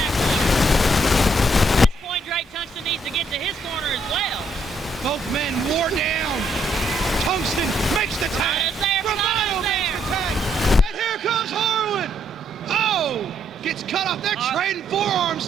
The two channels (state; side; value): normal; both; correlation 0.72